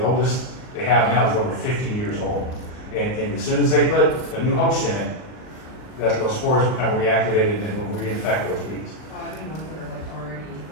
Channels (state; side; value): late; right; 38 ms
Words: oldest they have now is over 50 years old. And as soon as they put a new host in it, those spores become reactivated and will reinfect those bees. I mean, ones that are like already,